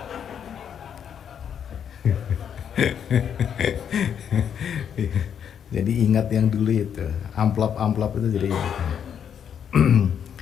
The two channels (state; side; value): quieter; right; 8.3 dB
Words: Jadi ingat yang dulu itu, amplop-amplop itu jadi ingat.